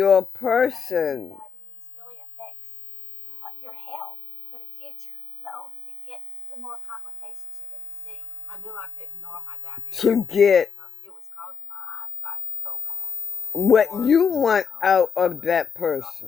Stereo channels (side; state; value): right; quieter; 6.5 dB